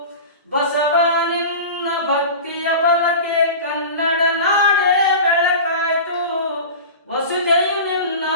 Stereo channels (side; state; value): both; inverted; correlation -0.32